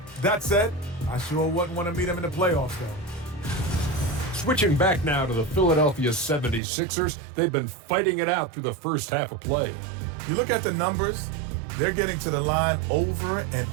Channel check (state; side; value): drops out; left; at 6.6 s